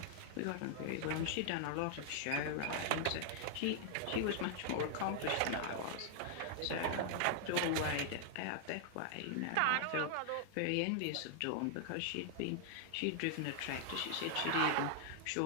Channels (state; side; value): different; both; correlation 0.00